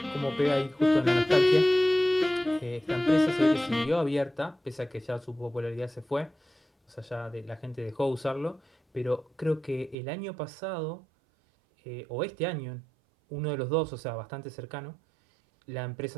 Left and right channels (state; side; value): drops out; left; at 10.0 s